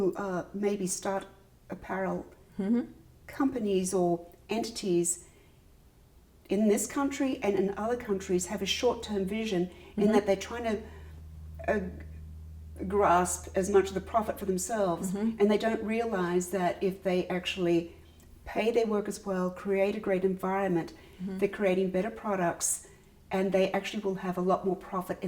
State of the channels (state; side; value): identical; both; correlation 1.00